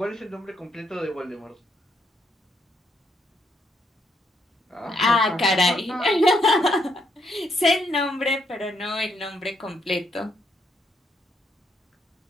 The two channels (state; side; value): normal; both; correlation 0.75